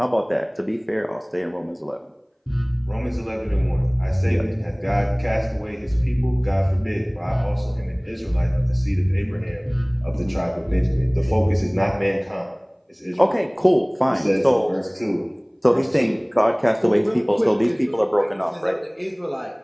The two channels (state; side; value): identical; both; correlation 1.00